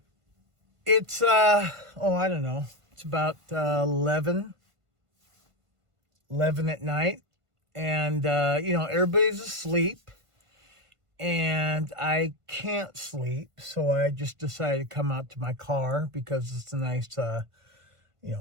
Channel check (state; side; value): late; left; 1.5 ms